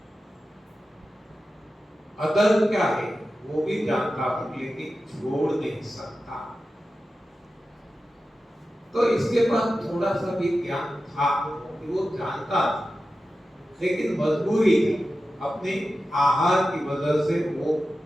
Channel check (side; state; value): both; normal; correlation 0.93